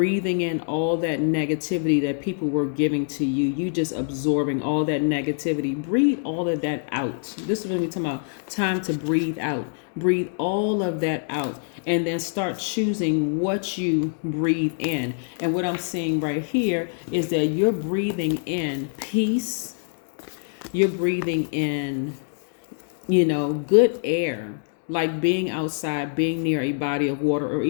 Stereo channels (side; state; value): right; silent; digital silence